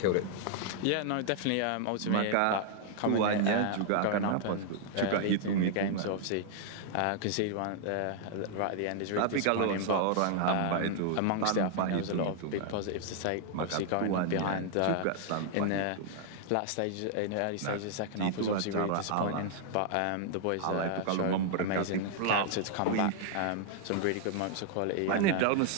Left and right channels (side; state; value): both; different; correlation 0.00